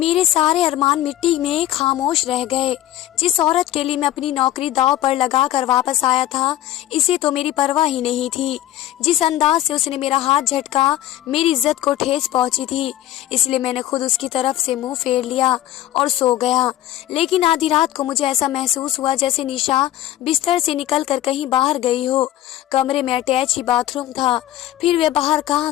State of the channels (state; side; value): quieter; right; 13.6 dB